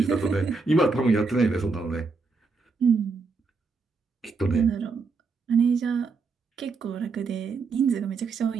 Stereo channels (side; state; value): left; quieter; 4.4 dB